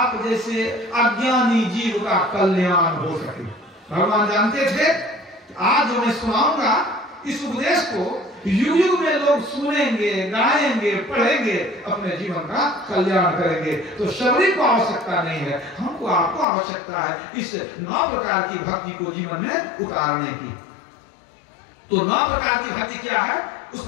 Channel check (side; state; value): right; drops out; at 16.4 s